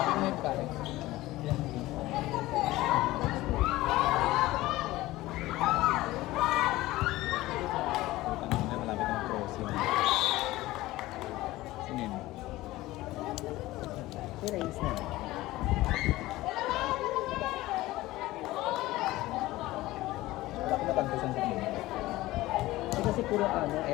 may pare? Putang ina, malapit na mag-crossing. Sinin. Erase na. Bakit natagpusan sa kanila? Hindi kasi puro ano,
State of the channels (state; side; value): quieter; right; 17.8 dB